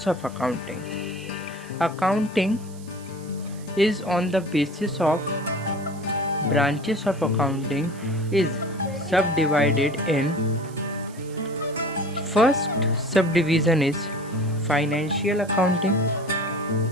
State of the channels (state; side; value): noise; right; hiss, 22 dB below the sound